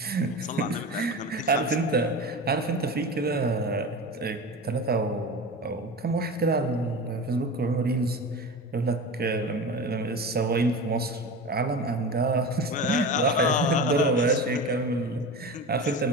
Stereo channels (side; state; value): both; normal; correlation 0.29